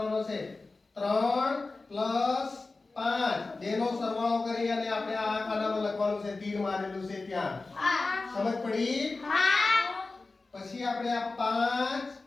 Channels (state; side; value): quieter; right; 3.6 dB